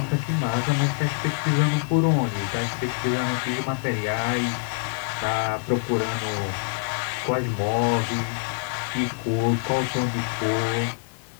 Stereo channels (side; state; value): right; silent; digital silence